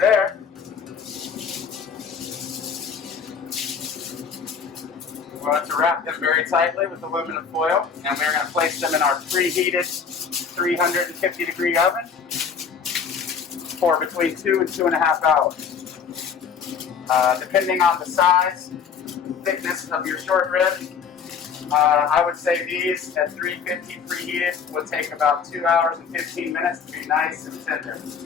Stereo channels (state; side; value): quieter; right; 6.4 dB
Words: we want to wrap them very tightly with aluminum foil, and we're going to place them in our preheated 350-degree oven for between 2 and 2.5 hours. Depending on the size, thickness of your short rib, I would say these at 350 preheated would take about 2 hours and 15 minutes to be nice and tender.